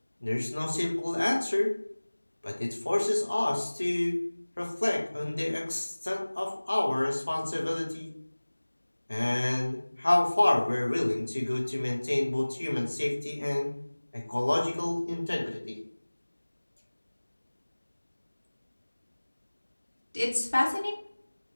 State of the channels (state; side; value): inverted; both; correlation -1.00